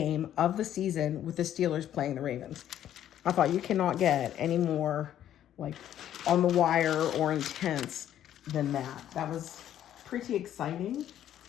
of the season with the Steelers playing the Ravens. I thought, you cannot get any more like on the wire or intense than that. That was pretty exciting.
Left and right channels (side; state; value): right; quieter; 11.2 dB